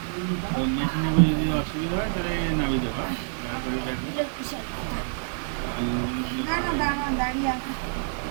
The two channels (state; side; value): silent; left; 60 dB below the other